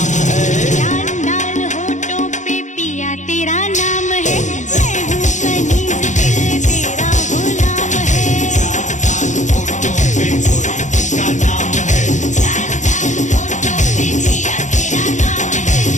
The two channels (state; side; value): late; right; 0.35 ms